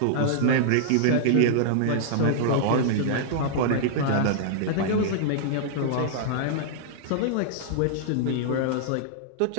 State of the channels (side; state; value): both; different; correlation -0.02